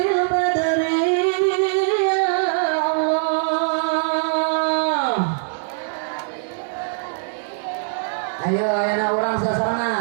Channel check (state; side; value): silent; left; digital silence